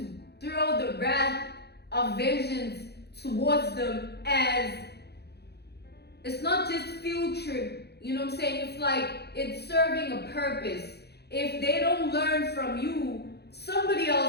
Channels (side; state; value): right; late; 0.48 ms